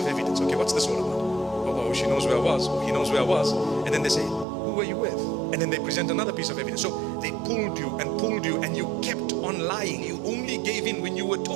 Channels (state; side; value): drops out; left; at 4.5 s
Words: evidence. Okay, what's this all about? Oh, she knows where I was. Oh, he knows where I was. And then they say, who were you with? And then they present another piece of evidence. So they pulled you and you kept on lying. You only gave in when you were